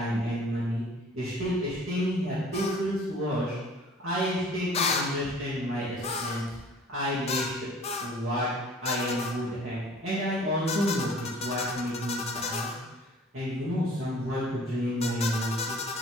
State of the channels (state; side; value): normal; both; correlation 0.50